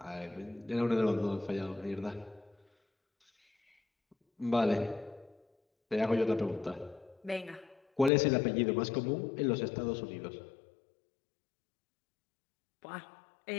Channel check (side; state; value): right; drops out; at 8.1 s